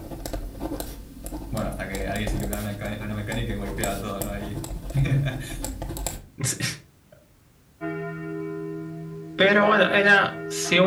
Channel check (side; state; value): both; identical; correlation 1.00